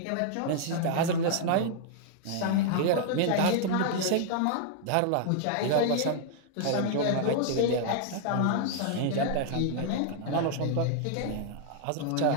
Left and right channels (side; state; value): both; different; correlation -0.01